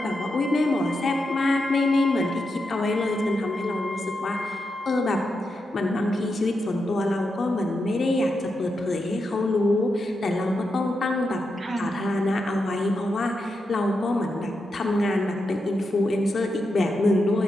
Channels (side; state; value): both; normal; correlation 0.86